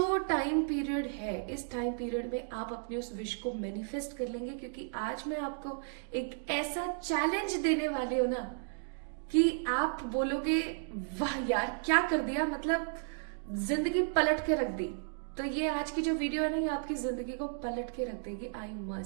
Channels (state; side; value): silent; left; digital silence